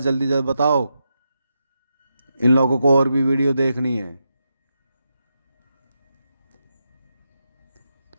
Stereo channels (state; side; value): inverted; both; correlation -0.86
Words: जल्दी जल्दी बताओ, इन लोगों को और भी वीडियो देखनी है।